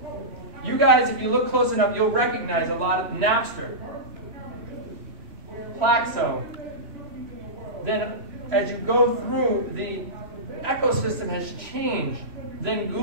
You guys, if you look close enough, you'll recognize a lot of Napster, Plaxo. Then as you go through, the ecosystem has changed. Then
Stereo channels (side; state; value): left; late; 3.1 ms